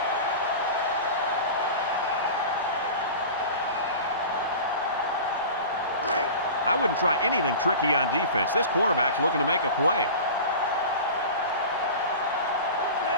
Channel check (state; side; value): inverted; both; correlation -0.34